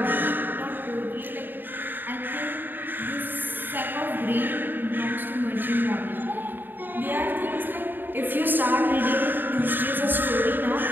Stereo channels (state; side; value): late; left; 0.093 ms